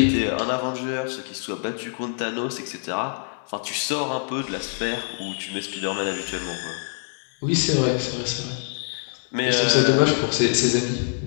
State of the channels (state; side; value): silent; right; 62 dB below the other